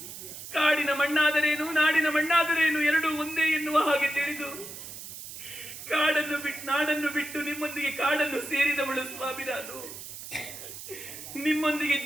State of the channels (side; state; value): right; noise; hiss, 11 dB below the sound